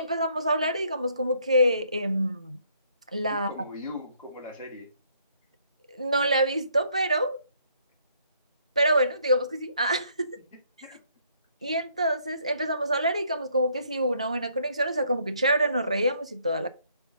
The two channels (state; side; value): inverted; both; correlation -0.67